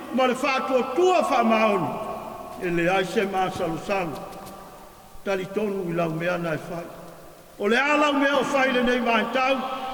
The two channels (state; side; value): identical; both; correlation 1.00